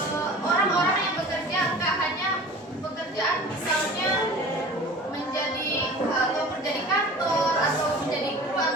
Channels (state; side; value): normal; both; correlation 0.40